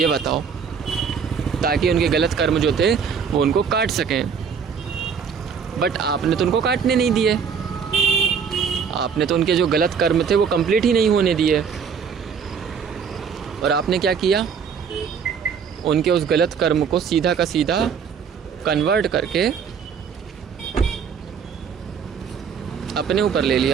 बताओ? ताकि उनके गलत कर्म जो थे वो उनको काट सकें। बट आपने तो उनको काटने नहीं दिए, आपने तो उनके जो गलत कर्म थे वो कंप्लीट ही नहीं होने दिए। और आपने क्या किया, उनके उस गलत कर्म को सीधा का सीधा कन्वर्ट करके अपने ऊपर ले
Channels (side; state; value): left; quieter; 6.5 dB